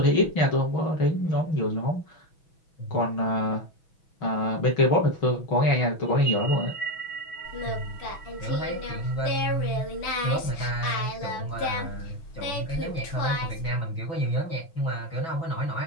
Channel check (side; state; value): right; late; 6.2 ms